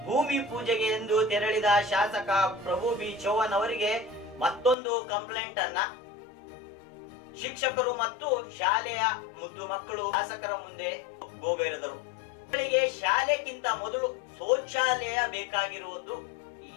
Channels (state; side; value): drops out; right; at 4.8 s